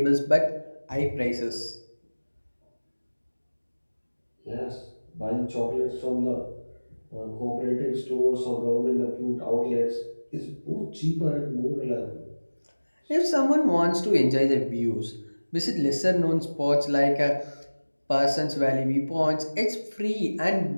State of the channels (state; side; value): inverted; both; correlation -1.00